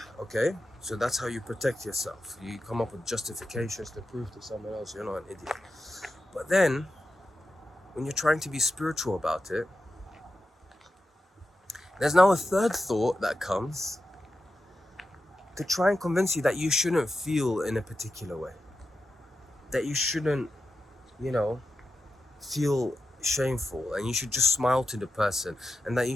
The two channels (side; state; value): both; normal; correlation 0.90